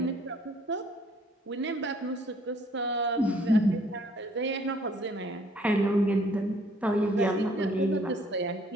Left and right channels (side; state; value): both; normal; correlation 0.61